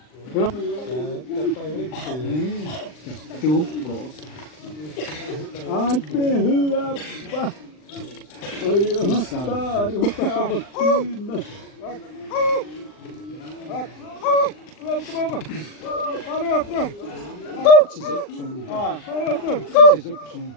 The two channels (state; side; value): late; right; 39 ms